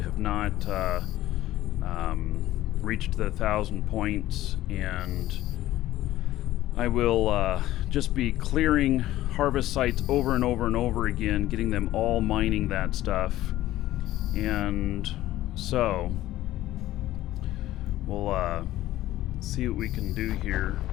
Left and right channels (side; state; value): right; quieter; 14.9 dB